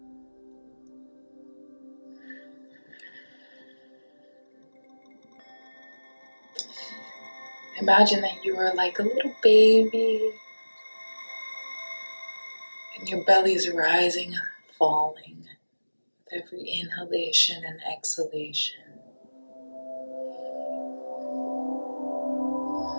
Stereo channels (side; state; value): both; inverted; correlation -1.00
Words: Imagine that you are like a little baby and your belly is rising and falling with every inhalation and exhalation.